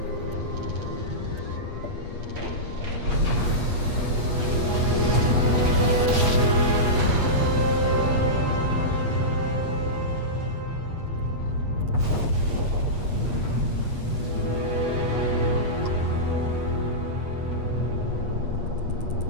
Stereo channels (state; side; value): late; left; 8.4 ms